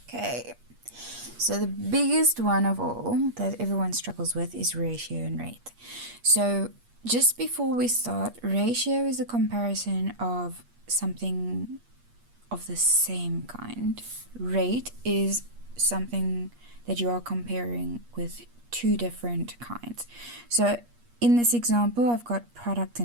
Okay, so the biggest one of all that everyone struggles with is ratio and rate. So just before we start, ratio is a comparison of something of the same kind. Rate is something that you are comparing with two different kinds. So in this example, I've got product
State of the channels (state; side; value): late; left; 8.4 ms